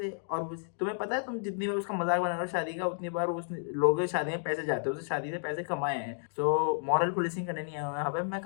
और तुम्हें पता है तुम जितनी बार उसका मजाक बना रहे हो शादी का उतनी बार उस लोग शादी में पैसे जाते हो, उससे शादी से पैसे कमाए हैं। सो मॉरल पुलिसिंग करने नहीं आया हूं यहाँ पे, मैं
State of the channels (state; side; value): silent; right; digital silence